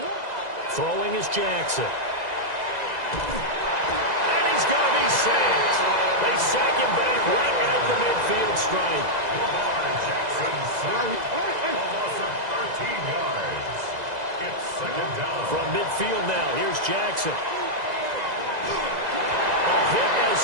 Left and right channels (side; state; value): left; late; 2.0 ms